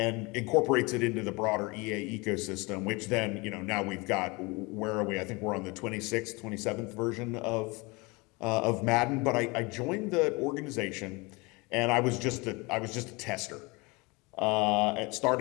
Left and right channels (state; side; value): quieter; right; 26.1 dB